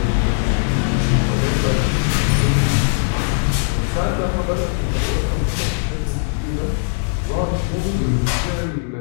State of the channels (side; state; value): right; silent; digital silence